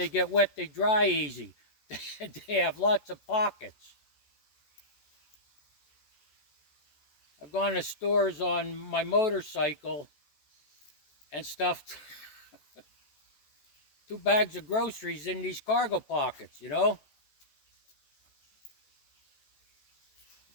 get wet, they dry easy. They have lots of pockets. I've gone to stores on my motorcycle and stuffed 2 bags of groceries in these cargo pockets, you know?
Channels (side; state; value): right; late; 14 ms